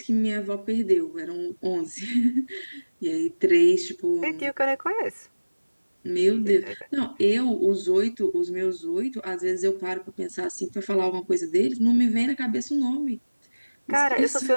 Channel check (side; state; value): both; inverted; correlation -1.00